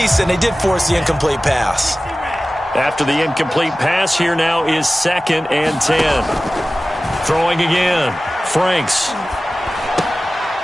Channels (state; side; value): normal; both; correlation 0.96